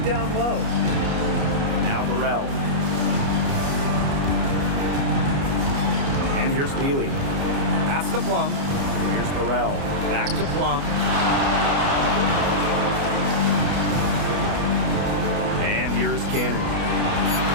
down low. Now Burrell. And here's Peely. Pass to Plum. Here's Burrell. Back to Plum. And here's Cannon.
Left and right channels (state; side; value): late; left; 29 ms